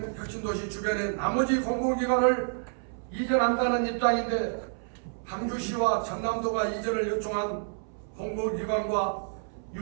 혁신도시 주변의 나머지 공공기관을 이전한다는 입장인데 강주시와 전남도가 이전을 요청한 공공기관과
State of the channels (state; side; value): silent; left; 59 dB below the other